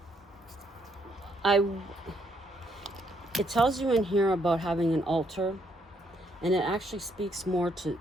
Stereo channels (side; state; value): both; normal; correlation 0.72